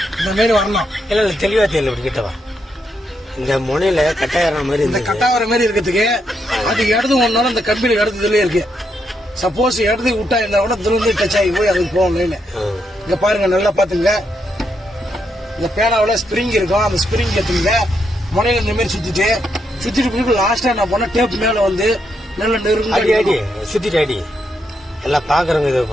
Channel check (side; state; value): both; normal; correlation 0.80